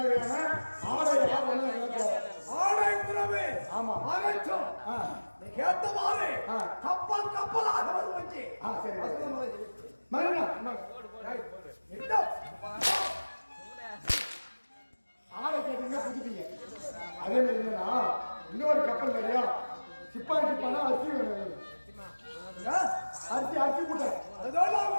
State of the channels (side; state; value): both; inverted; correlation -1.00